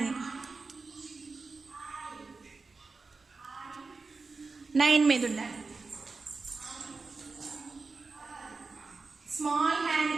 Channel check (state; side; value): quieter; left; 4.2 dB